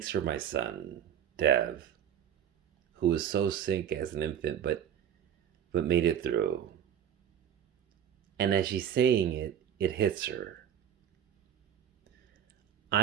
for my son, Dev, who was so sick as an infant but made it through. And as she's saying it, it hits her.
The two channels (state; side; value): quieter; left; 9.4 dB